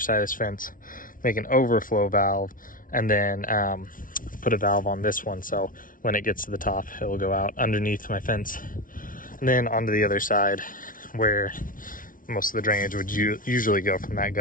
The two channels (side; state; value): right; late; 0.39 ms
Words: of this fence, make an overflow valve, and then put a valve on this one, so when it gets to the top, it will go out underneath my fence and then onto the other side where most of the drainage would usually go from that